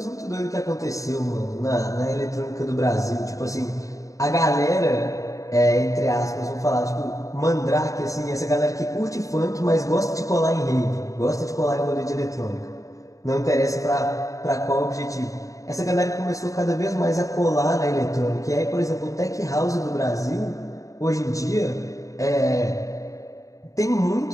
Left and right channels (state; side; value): late; right; 0.16 ms